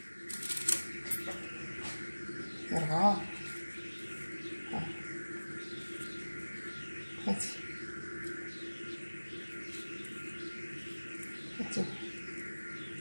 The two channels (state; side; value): inverted; both; correlation -1.00